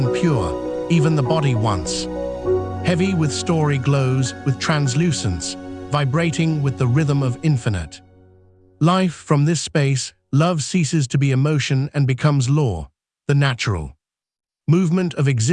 pure, even the body once heavy with story glows with translucence, vibrating with the rhythm of infinite life. From this space, love ceases to be emotion and becomes law, the natural movement of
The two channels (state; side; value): identical; both; correlation 1.00